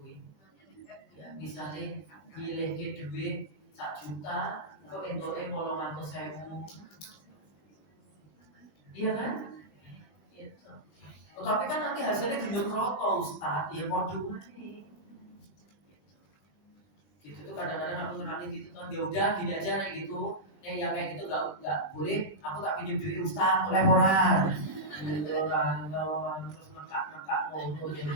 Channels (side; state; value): right; late; 20 ms